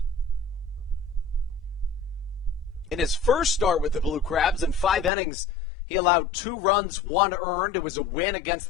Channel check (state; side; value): drops out; right; at 5.1 s